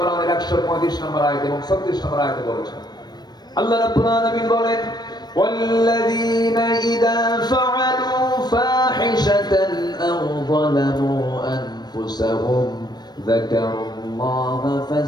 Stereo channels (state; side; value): late; right; 0.20 ms